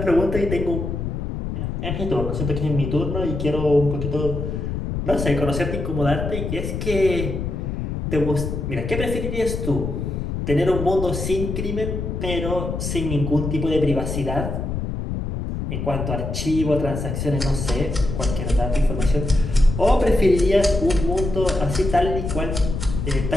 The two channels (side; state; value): left; noise; rumble, 4 dB below the sound